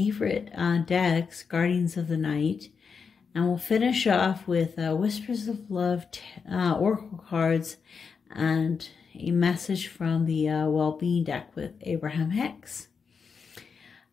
decks, Guardians of the Night. And we'll finish off with Whispers of Love Oracle cards and a message from the Well-Being deck with Abraham Hicks.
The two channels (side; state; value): right; quieter; 5.7 dB